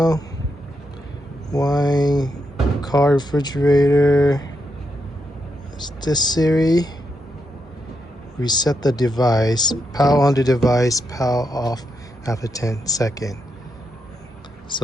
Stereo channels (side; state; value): both; normal; correlation 0.83